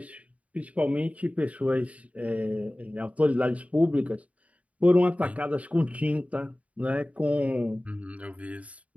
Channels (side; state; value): left; late; 0.067 ms